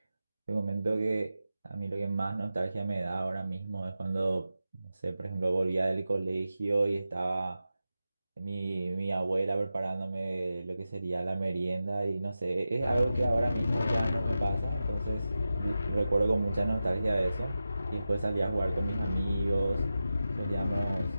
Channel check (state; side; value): inverted; both; correlation -0.92